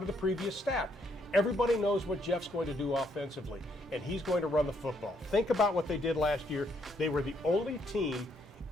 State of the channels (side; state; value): both; normal; correlation 0.72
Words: of the previous staff. Everybody knows what Jeff's going to do offensively, and he's going to run the football. Think about what they did last year. They were the only team